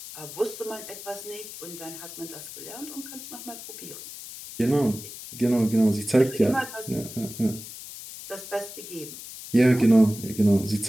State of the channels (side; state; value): left; noise; hiss, 12 dB below the sound